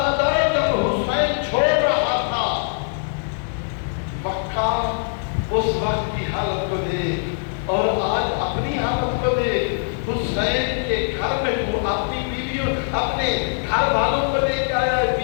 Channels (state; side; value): silent; right; 62 dB below the other